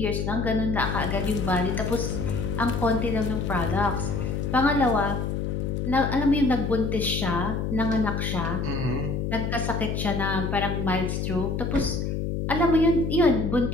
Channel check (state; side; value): noise; left; hum, 1 dB below the sound